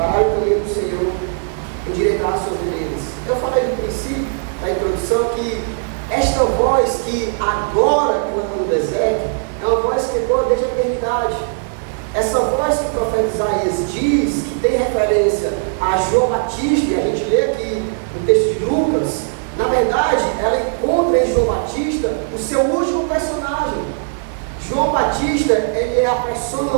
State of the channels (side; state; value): left; silent; 57 dB below the other